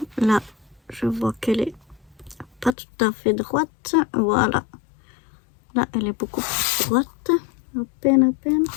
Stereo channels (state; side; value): drops out; right; at 2.7 s